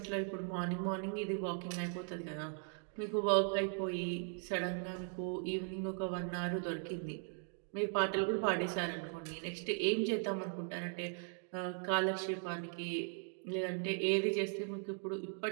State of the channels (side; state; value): left; silent; 52 dB below the other